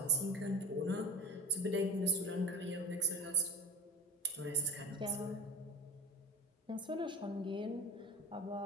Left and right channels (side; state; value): both; normal; correlation 0.28